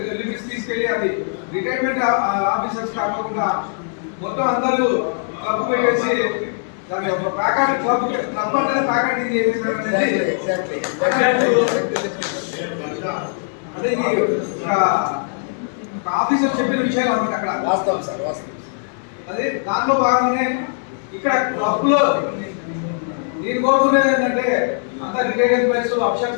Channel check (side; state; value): right; silent; 63 dB below the other